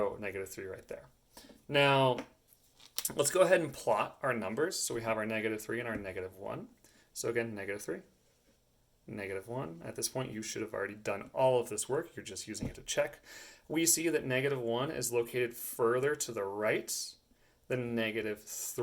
negative 3 right there. Now, let's go ahead and plot our numbers. So we have our negative 3 and our negative 1. So again, negative 3, negative 1. At this point, you should have already done all of this work. You're just using it to check. We see that negative 1 is located further to the right than negative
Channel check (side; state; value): both; identical; correlation 1.00